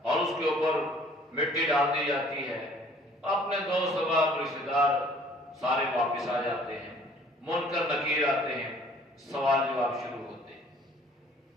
اور اس کے اوپر مٹی ڈال دی جاتی ہے، اپنے دوست احباب رشتہ دار سارے واپس آ جاتے ہیں، منکر نکیر آتے ہیں، سوال جواب شروع ہوتے ہیں۔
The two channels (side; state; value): both; normal; correlation 0.55